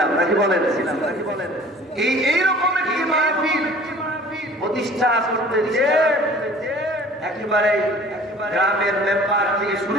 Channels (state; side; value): normal; both; correlation 0.48